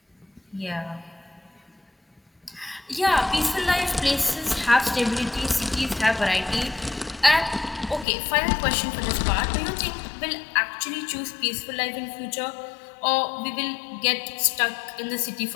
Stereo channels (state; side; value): drops out; right; at 8.1 s